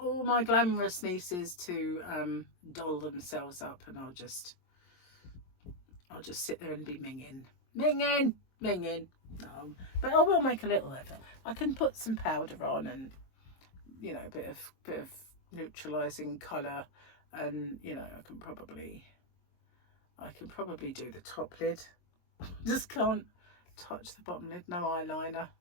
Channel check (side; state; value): right; late; 22 ms